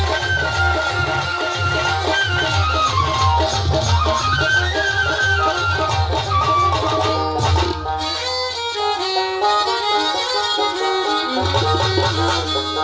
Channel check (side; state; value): both; identical; correlation 1.00